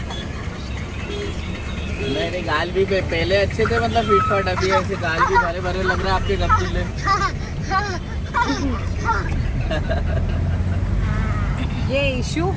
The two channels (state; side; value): identical; both; correlation 1.00